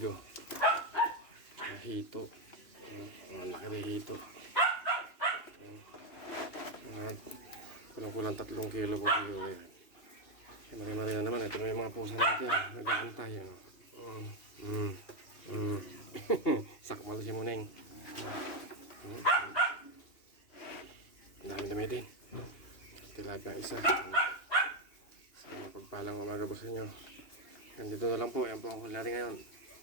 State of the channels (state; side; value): late; right; 2.8 ms